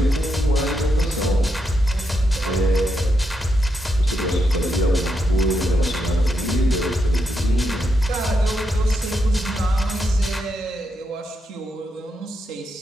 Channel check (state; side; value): normal; both; correlation 0.82